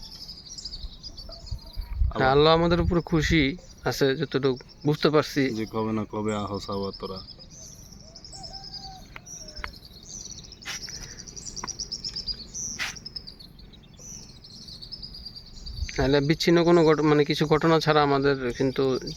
আল্লাহ আমাদের উপরে খুশি আছে যতটুকু বুঝতে পারছি, যে কবে না কবে আহস আবার তোরা। নাহলে বিচ্ছিন্ন কোনো মানে কিছু ঘটনা ছাড়া আমাদের কিন্তু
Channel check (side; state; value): both; identical; correlation 1.00